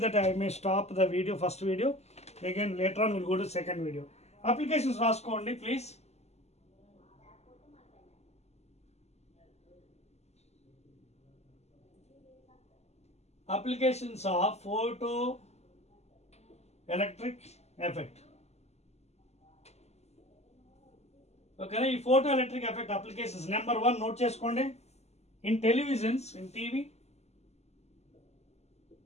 that I may stop the video, first video. Again later on will go to second video. Applications రాసుకోండి please. Applications of photo electric effect. ఓకేనా, ఈ photo electric effect applications number 1 note చేసుకోండి. In televisions, in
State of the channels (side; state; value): right; late; 0.31 ms